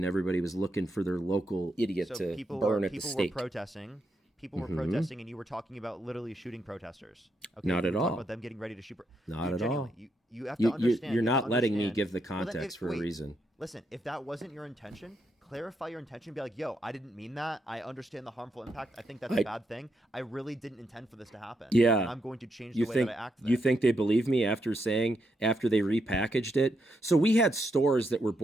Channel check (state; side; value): normal; both; correlation 0.81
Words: everybody was looking for their local idiot So to people burn were at the people were stake. protesting. People were protesting, and you were talking about literally shooting protesters. Okay, Not you at were talking all. About them getting ready to shoot. Not Dude, at genuinely, all. You have to You- understand. you're you have not to letting me understand. give the Well, then context for a wait, reason. Listen, if that wasn't your intention, clarify your intention. Be like, yo, I didn't mean that. I understand the harmful impact. I think that's a bad thing. I really didn't intend for this to happen. Yeah. And I'm going to change the way that I act. You think they believe me after they repackaged it? So we had stores that were